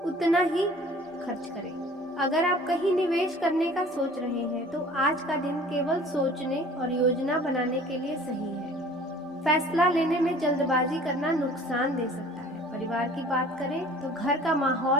उतना ही खर्च करें। अगर आप कहीं निवेश करने का सोच रहे हैं तो आज का दिन केवल सोचने और योजना बनाने के लिए सही है। फैसला लेने में जल्दबाजी करना नुकसान दे सकता है। परिवार की बात करें तो घर का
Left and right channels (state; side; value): normal; both; correlation 0.48